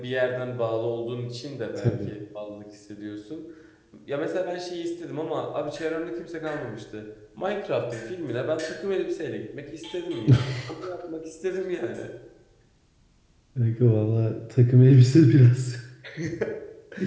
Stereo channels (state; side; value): identical; both; correlation 1.00